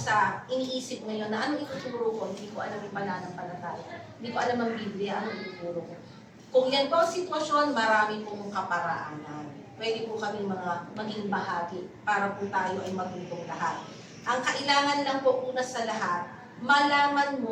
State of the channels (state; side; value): identical; both; correlation 1.00